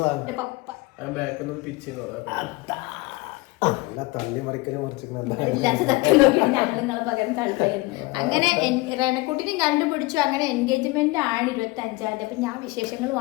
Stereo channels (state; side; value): quieter; right; 22.7 dB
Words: പപ്പ അങ്ങനെ റെനക്കുട്ടിനെയും കണ്ടുപിടിച്ചു. അങ്ങനെ എൻഗേജ്മെന്റ് ആണ് 25-ാം തീയതി. അപ്പൊ ഞാൻ വിശേഷങ്ങളും